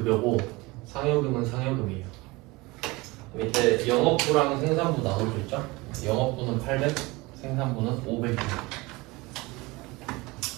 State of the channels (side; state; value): left; quieter; 23.0 dB